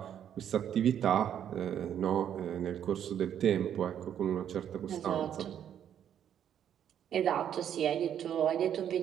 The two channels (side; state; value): left; quieter; 9.6 dB